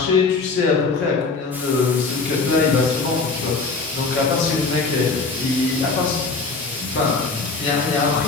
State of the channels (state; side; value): quieter; right; 4.2 dB